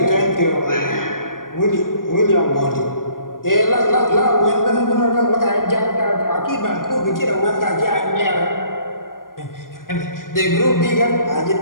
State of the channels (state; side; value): late; right; 0.90 ms